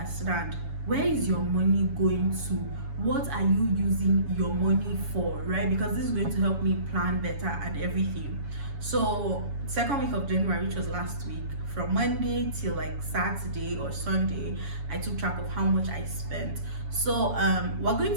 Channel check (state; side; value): late; left; 7.1 ms